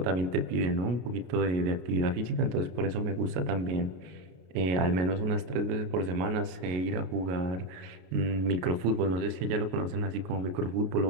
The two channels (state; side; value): late; left; 33 ms